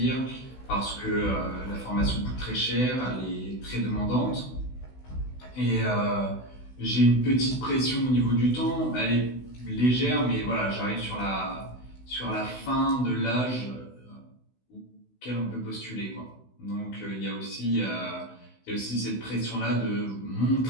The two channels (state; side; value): late; right; 16 ms